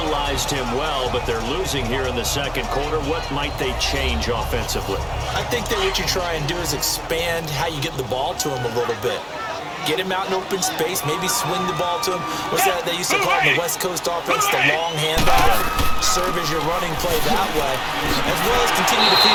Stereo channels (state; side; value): identical; both; correlation 1.00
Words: him well, but they're losing here in the second quarter. What might they change offensively? I think that what you try and do is expand how you get the ball to him a little bit. Get him out in open space, maybe swing the ball to him. What's that they used to call it in the West Coast offense, the long handoff. Serve as your running play that way, as well as continue to feed